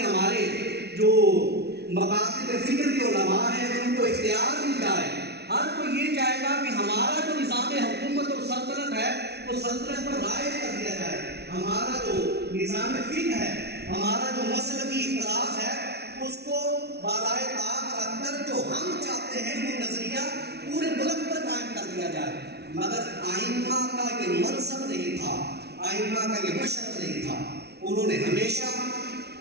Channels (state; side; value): late; left; 0.48 ms